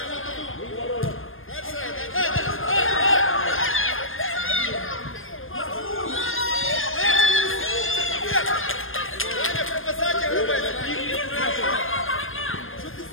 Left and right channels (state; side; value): late; right; 0.59 ms